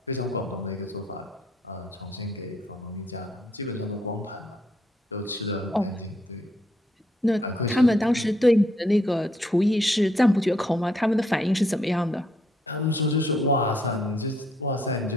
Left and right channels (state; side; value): normal; both; correlation 0.71